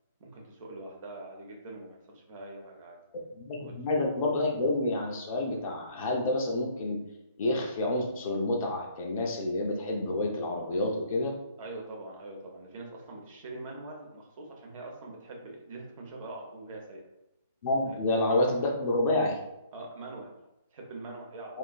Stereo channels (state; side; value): inverted; both; correlation -0.59